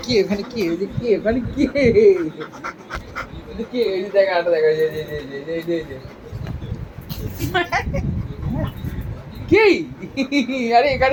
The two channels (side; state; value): both; identical; correlation 1.00